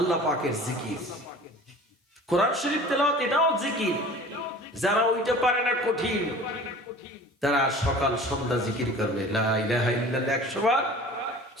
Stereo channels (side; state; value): both; normal; correlation 0.43